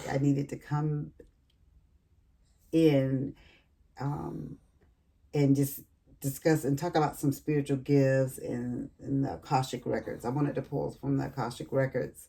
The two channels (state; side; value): identical; both; correlation 1.00